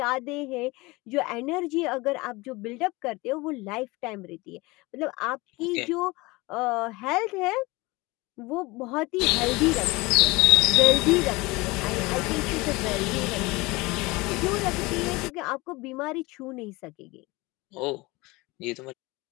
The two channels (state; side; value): quieter; right; 23.0 dB